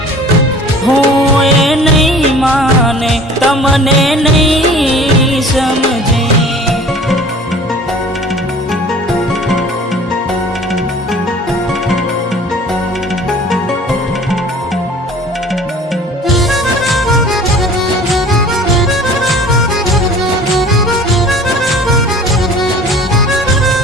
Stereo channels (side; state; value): both; normal; correlation 0.46